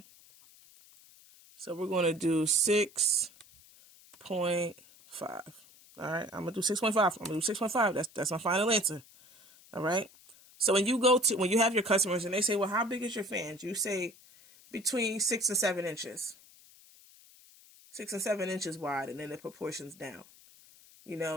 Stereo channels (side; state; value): left; noise; hiss, 24 dB below the sound